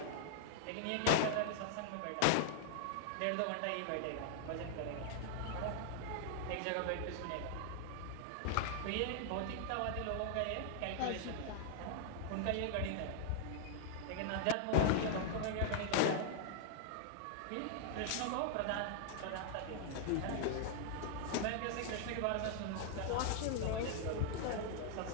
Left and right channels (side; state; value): both; different; correlation -0.01